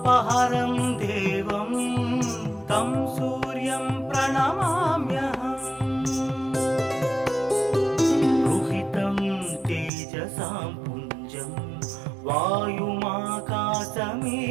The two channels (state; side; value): drops out; left; at 9.9 s